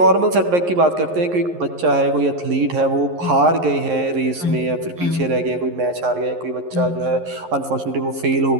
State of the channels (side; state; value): left; late; 11 ms